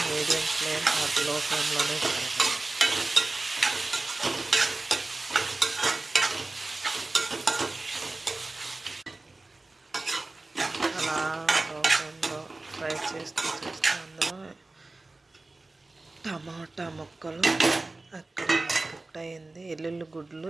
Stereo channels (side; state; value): left; quieter; 3.1 dB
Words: మీడియం ఫ్లేమ్ ఆర్ లో ఫ్లేమ్లోనే చేయాలి. అలా లో ఫ్లేమ్లో ఫ్రై చేస్తూ అందులో టమాటా ముక్కలు అక్కడ కుక్ అయింది. ఎల్లుల్లి గుడ్లు